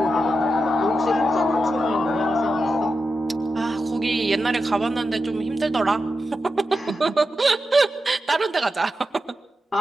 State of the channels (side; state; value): both; normal; correlation 0.89